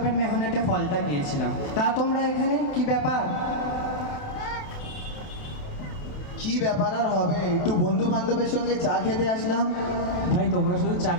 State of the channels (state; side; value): late; right; 28 ms